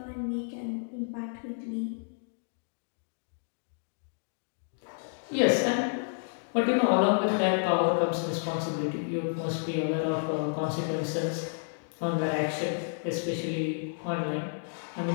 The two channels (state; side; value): silent; right; digital silence